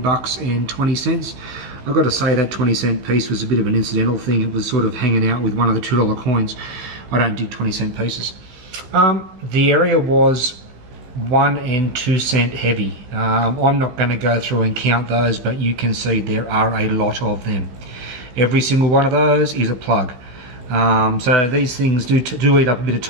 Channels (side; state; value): left; late; 16 ms